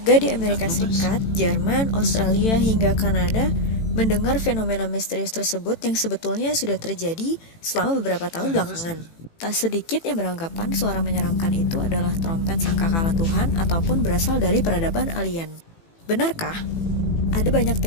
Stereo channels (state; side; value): late; right; 18 ms